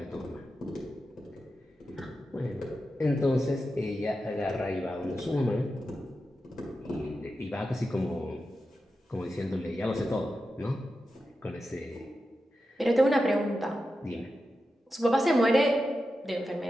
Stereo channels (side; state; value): both; normal; correlation 0.90